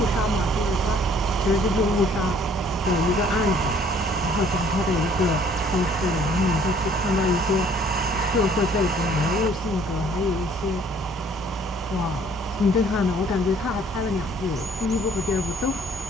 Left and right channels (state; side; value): normal; both; correlation 0.58